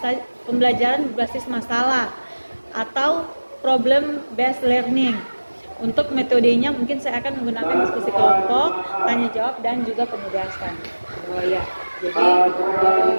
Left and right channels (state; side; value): inverted; both; correlation -1.00